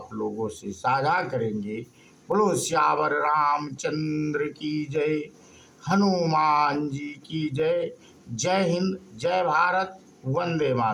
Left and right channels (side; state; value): both; identical; correlation 1.00